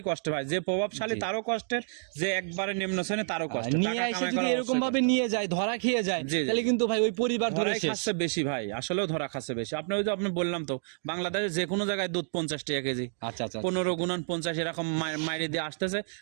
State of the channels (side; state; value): left; silent; digital silence